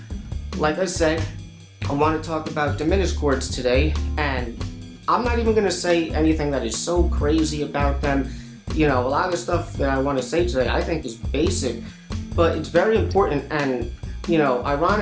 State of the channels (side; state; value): both; identical; correlation 1.00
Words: like I said, I want to talk about diminished chords today, and I'm not even going to say anything that is so crazy about them. You know, a lot of the stuff that I want to say today I think is basic, but it's very important. And, you know,